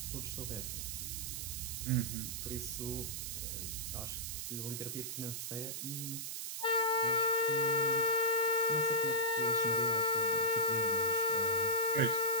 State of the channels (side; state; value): right; noise; hiss, 5 dB below the sound